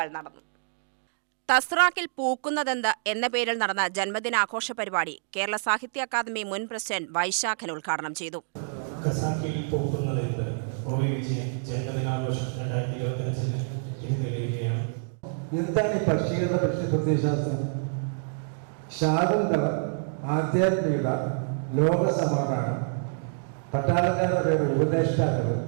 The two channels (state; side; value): silent; left; digital silence